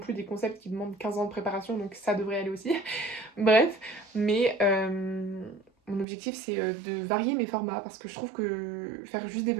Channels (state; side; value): drops out; left; at 6.1 s